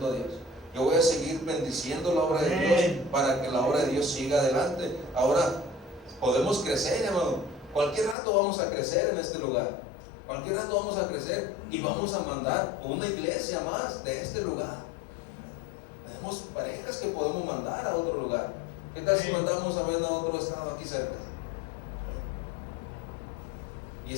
a Dios. Yo voy a seguir bendiciendo la obra de Dios, para que la obra de Dios siga adelante. Ahora podemos crecer, hermano. Cualquier rato vamos a crecer en este lugar. Cualquier rato vamos a crecer y vamos a mandar una iglesia más de este lugar. Tenemos parejas que podemos mandar a otro lugar. ¿Qué tal si mandamos a ver a otro estado aquí cerca? Y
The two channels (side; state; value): right; drops out; at 8.2 s